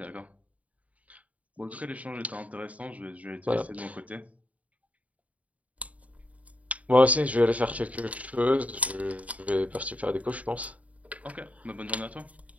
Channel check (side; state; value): left; late; 0.069 ms